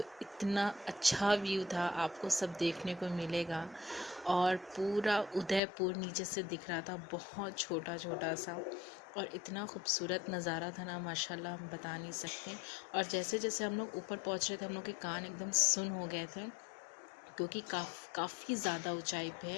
इतना अच्छा व्यू था, आपको सब देखने को मिलेगा। और पूरा उदयपुर नीचे से दिख रहा था, बहुत छोटा छोटा सा, और इतना खूबसूरत नज़ारा था ना, माशाल्लाह हम बता नहीं सकते। और जैसे जैसे हम लोग ऊपर पहुंच रहे थे, हम लोग के कान एकदम सुन हो गए थे, क्योंकि काफ़ी ज़्यादा ऊंचाई पे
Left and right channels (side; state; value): right; drops out; at 5.6 s